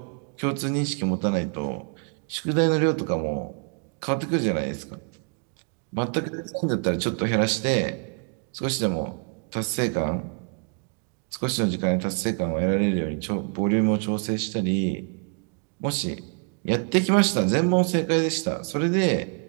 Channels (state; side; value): quieter; left; 39.2 dB